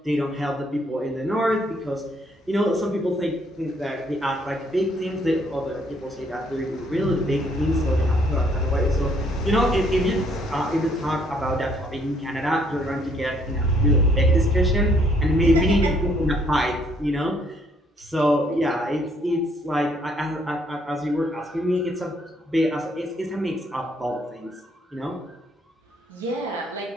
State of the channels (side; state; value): both; normal; correlation 0.67